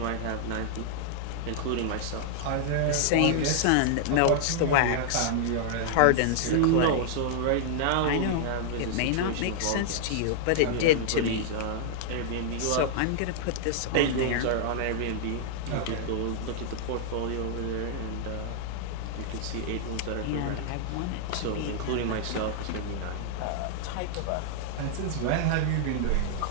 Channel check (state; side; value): different; both; correlation -0.01